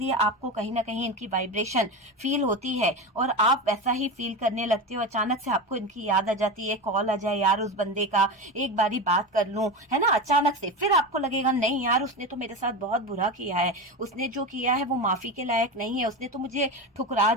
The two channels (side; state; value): both; normal; correlation 0.22